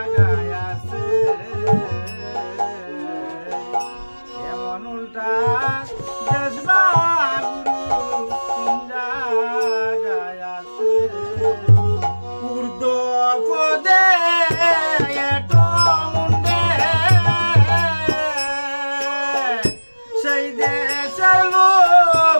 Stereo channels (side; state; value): both; inverted; correlation -1.00